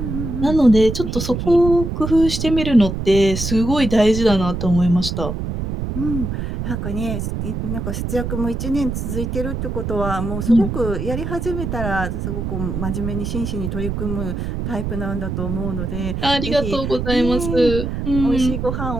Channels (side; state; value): right; noise; rumble, 3 dB below the sound